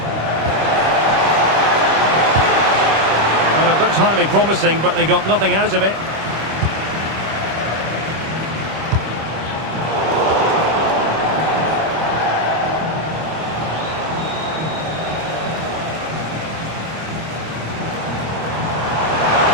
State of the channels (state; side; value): late; left; 25 ms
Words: Well, it looked highly promising, but they got nothing out of it.